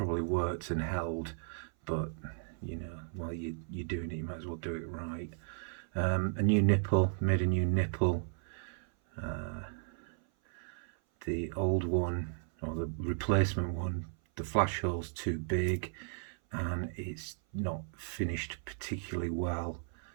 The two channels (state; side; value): silent; left; 54 dB below the other